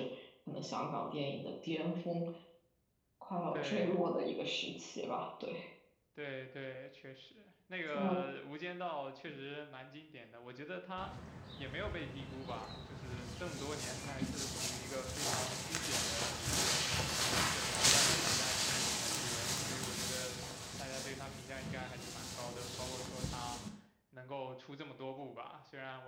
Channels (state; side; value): identical; both; correlation 1.00